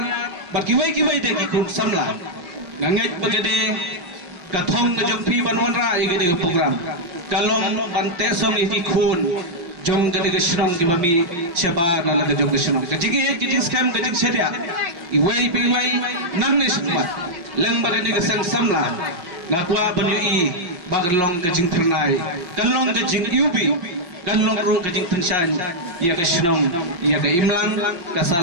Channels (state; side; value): late; left; 5.6 ms